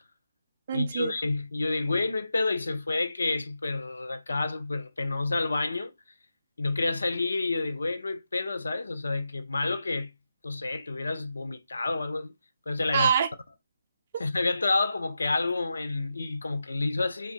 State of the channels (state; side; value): inverted; both; correlation -0.89